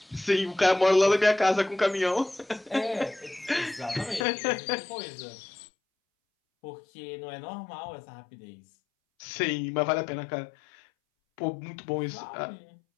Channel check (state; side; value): drops out; right; at 4.2 s